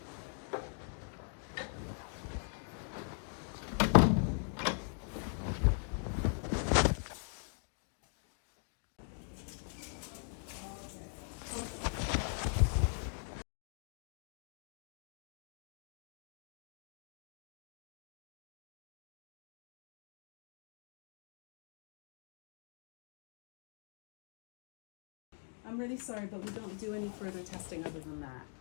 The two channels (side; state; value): right; silent; 50 dB below the other